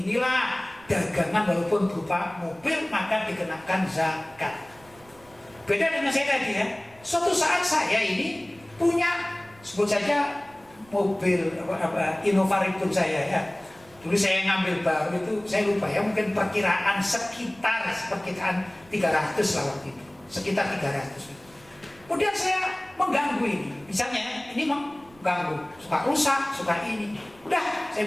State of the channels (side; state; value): right; noise; rumble, 27 dB below the sound